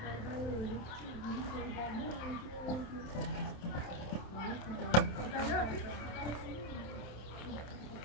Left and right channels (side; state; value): right; late; 27 ms